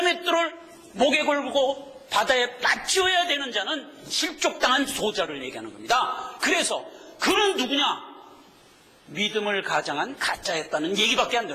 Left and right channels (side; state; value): both; identical; correlation 1.00